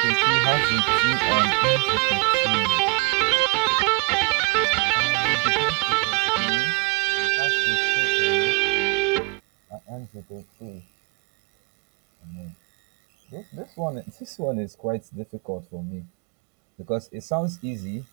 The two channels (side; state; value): left; quieter; 29.5 dB